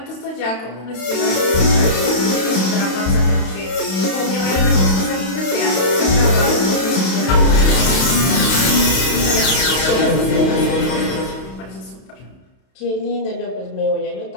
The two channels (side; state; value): right; late; 32 ms